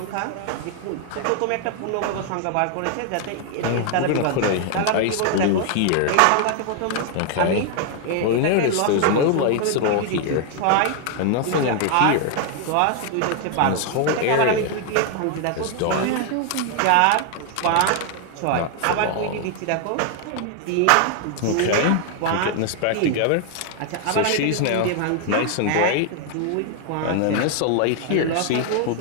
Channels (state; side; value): different; both; correlation 0.00